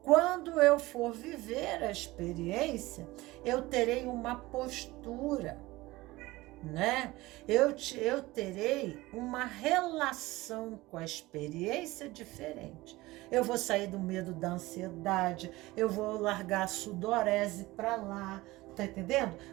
quando eu for viver a experiência, eu terei uma postura, né? Eu terei uma relação com a experiência diferente. Eu vou sair do medo da ansiedade, eu vou largar a sudorese para lá, tá entendendo?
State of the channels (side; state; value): left; quieter; 19.6 dB